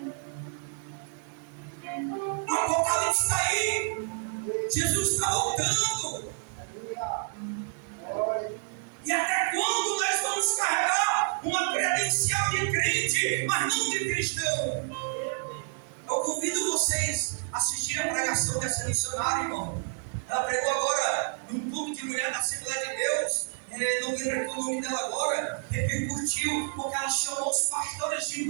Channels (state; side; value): silent; left; 59 dB below the other